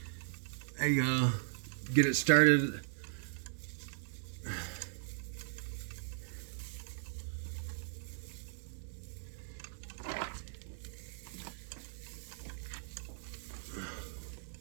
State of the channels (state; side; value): silent; left; digital silence